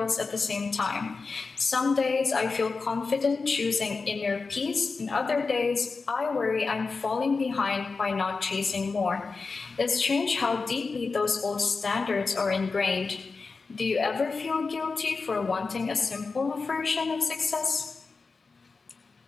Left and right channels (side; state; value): right; quieter; 4.4 dB